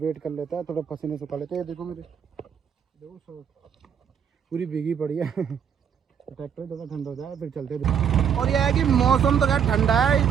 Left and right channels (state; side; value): quieter; left; 7.9 dB